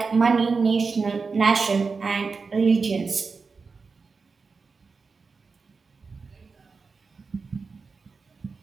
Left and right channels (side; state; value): left; quieter; 4.6 dB